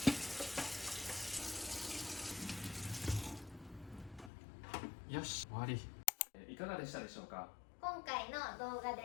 よし、終わり。いかがでしたでしょうか。今回の動画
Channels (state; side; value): drops out; right; at 4.3 s